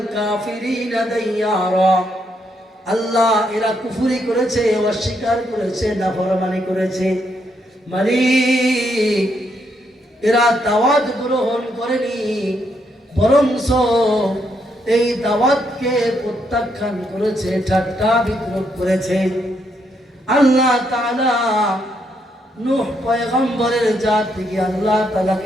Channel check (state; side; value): normal; both; correlation 0.76